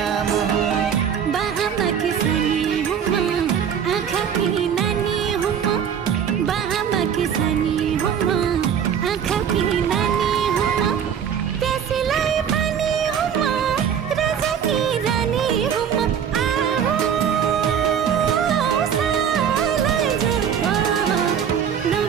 मोह बाहामा किसानी हुमा आँखा की नानी हुमा बाहामा किसानी हुमा आँखा की नानी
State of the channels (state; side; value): quieter; left; 8.1 dB